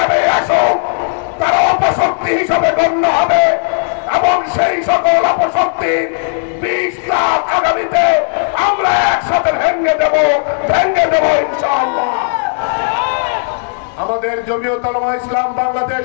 আসুক তারা অপশক্তি হিসাবে গণ্য হবে এবং সেই সকল অপশক্তির বিষটা আগামীতে আমরা একসাথে ভেঙে দেব ইনশাআল্লাহ। আমাদের জমিয়তে উলামা ইসলাম বাংলাদেশ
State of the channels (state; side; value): silent; right; digital silence